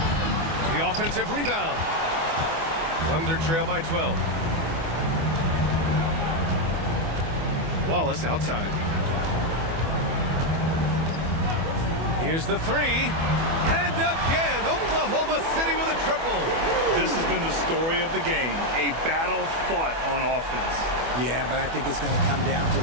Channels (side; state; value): left; late; 24 ms